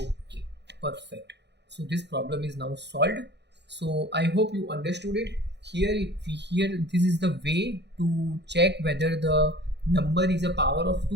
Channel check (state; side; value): late; left; 0.50 ms